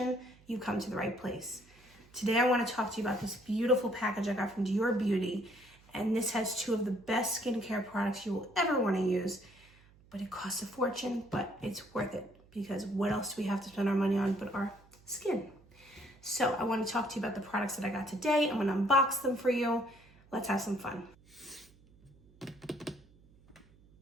you come to the right place. Today I want to talk to you about this beautiful package I got from Dior Beauty. And this has 2 of the best skincare products you will ever want to use. But it costs a fortune, but it's worth it. Because what else do we have to spend our money on but our skin? So I want to talk to you about the products that I got today. I'm going to unbox them for you. Let's have some fun.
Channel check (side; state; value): right; noise; hum, 27 dB below the sound